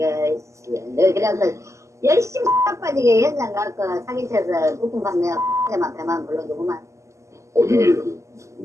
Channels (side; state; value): left; late; 0.14 ms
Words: 너 그래서 열심히 빠지게 현장 가서 사기쳐서 부품 판매 때만 배만 불러주고만. 우리는